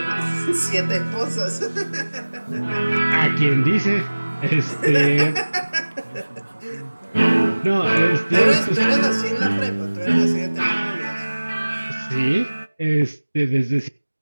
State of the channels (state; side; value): inverted; both; correlation -1.00